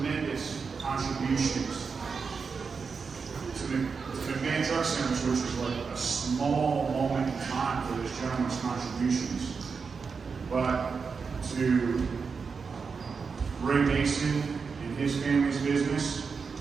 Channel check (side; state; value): left; quieter; 5.3 dB